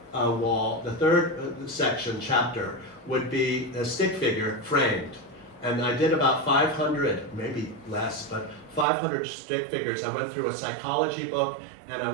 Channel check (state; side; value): drops out; left; at 8.8 s